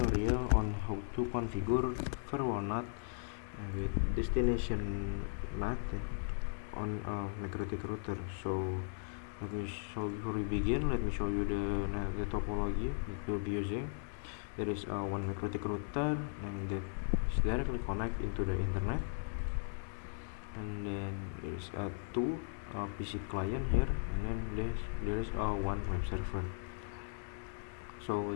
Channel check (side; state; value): right; silent; digital silence